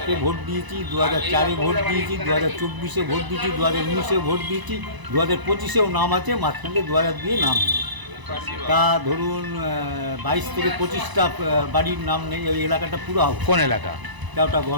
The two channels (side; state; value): left; late; 1.0 ms